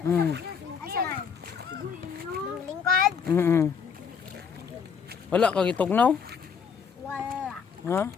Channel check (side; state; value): right; quieter; 6.5 dB